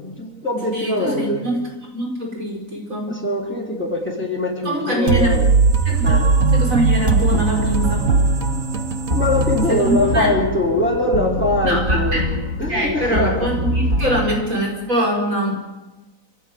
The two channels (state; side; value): late; left; 3.9 ms